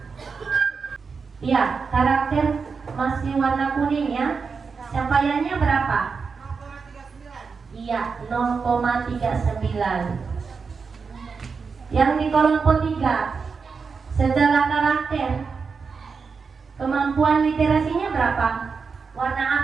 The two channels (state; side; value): quieter; left; 5.2 dB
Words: Iya, karakter masih warna kuning ya. Capaiannya berapa? Iya, 0,39. Yang di kelompok 3, setelah karakter, kemampuan literasinya berapa? Warna